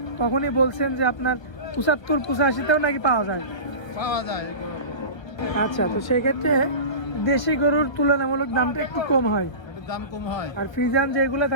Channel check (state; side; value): late; right; 1.1 ms